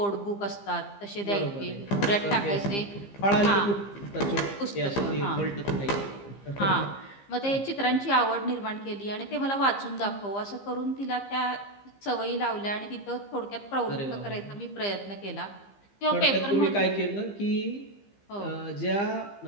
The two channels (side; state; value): right; late; 15 ms